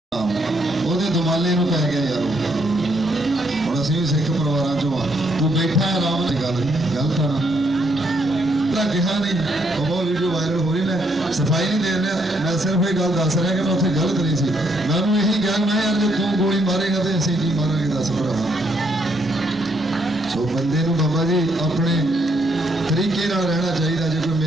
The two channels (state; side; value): normal; both; correlation 0.73